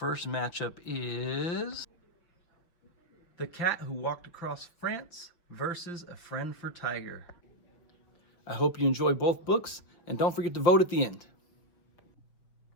matchup is The Cat Who Walked Across France versus A Friend for Tiger. I hope you enjoy both books, and don't forget to vote at the end.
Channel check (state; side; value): late; right; 5.9 ms